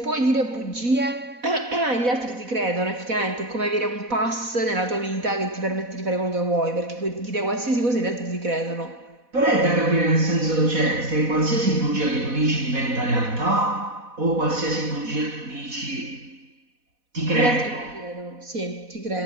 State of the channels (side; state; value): left; late; 4.1 ms